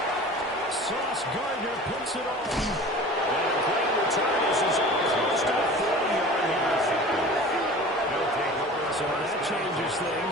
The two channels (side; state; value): both; normal; correlation 0.40